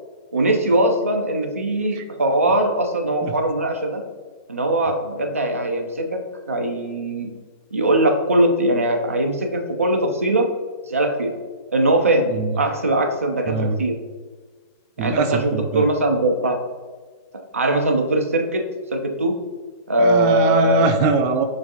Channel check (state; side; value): inverted; both; correlation -0.42